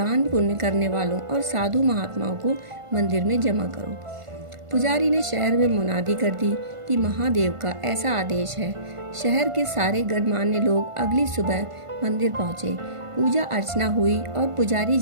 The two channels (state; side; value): late; left; 1.5 ms